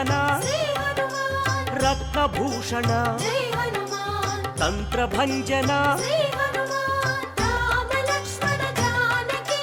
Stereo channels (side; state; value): both; identical; correlation 1.00